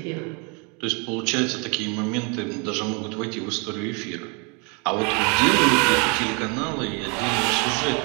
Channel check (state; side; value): quieter; left; 33.2 dB